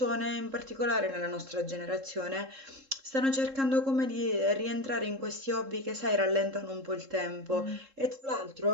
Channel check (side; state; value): left; late; 3.7 ms